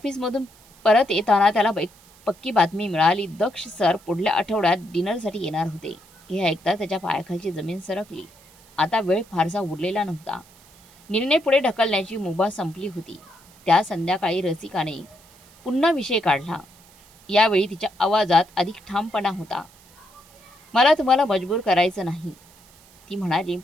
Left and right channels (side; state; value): right; noise; hiss, 27 dB below the sound